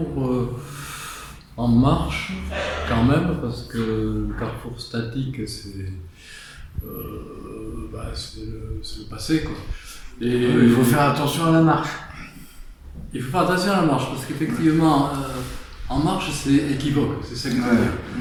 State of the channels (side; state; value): both; identical; correlation 1.00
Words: en marche quand même, parce que le carrefour statique c'est le passé quoi. Et Il faut faire attention à la marche. il faut faire attention à la marche, parce qu'effectivement en marche c'est équivoque, c'est ça que je veux dire.